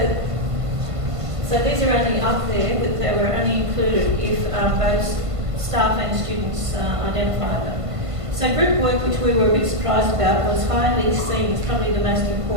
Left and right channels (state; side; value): late; left; 1.5 ms